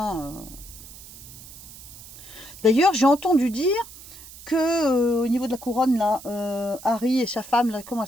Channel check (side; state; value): right; noise; hiss, 17 dB below the sound